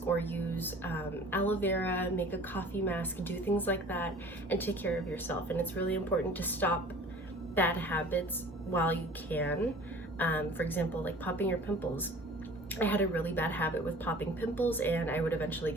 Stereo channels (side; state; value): both; normal; correlation 0.46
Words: or use aloe vera, make a coffee mask, do things like that, and take care of yourself. And it's really important to stop bad habits while you can. For example, like popping your pimples. I had a really bad habit with popping pimples, and I would eventually